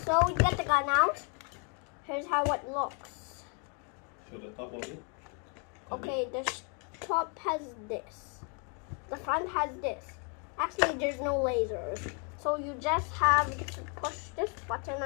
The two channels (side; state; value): right; quieter; 37.8 dB